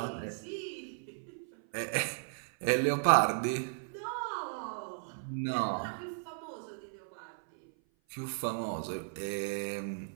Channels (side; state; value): left; silent; 54 dB below the other